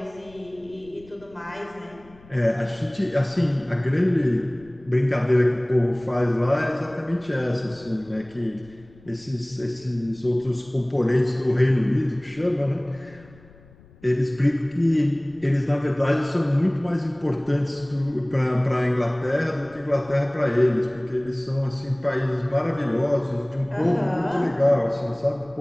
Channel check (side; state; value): left; noise; rumble, 25 dB below the sound